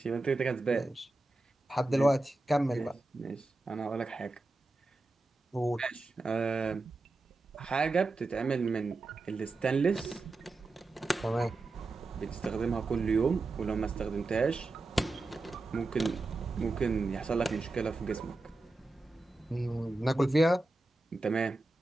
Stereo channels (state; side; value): quieter; left; 3.1 dB